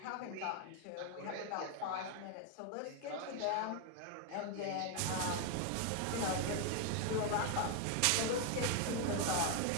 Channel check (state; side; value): different; both; correlation 0.01